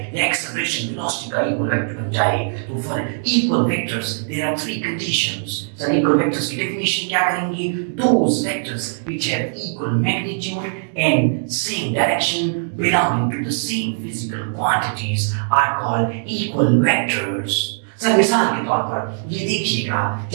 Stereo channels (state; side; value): silent; left; digital silence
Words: या एक्सेलरेशन वेलोसिटी का इक्वल वेक्टर बन जाए। तो for equal vectors there are three conditions. Sir equal vectors की डेफिनेशन क्या करेंगे? Those vectors which have equal magnitude and same direction belonging to the same physical quantities are called equal vectors। Sir मिसाल के तौर पर ये देखिएगा,